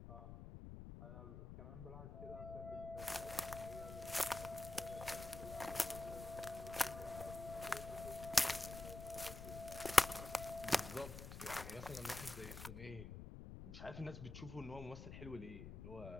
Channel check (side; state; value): left; noise; rumble, 10 dB below the sound